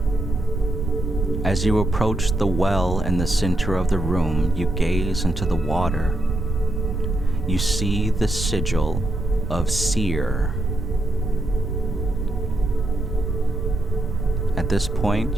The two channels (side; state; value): right; noise; rumble, 3 dB below the sound